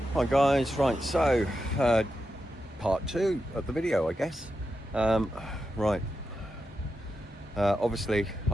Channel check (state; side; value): normal; both; correlation 0.88